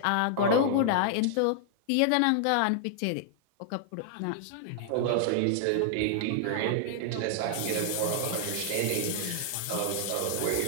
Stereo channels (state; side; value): different; both; correlation 0.00